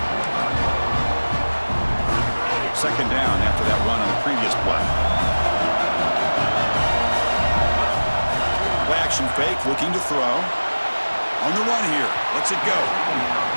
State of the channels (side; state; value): both; inverted; correlation -1.00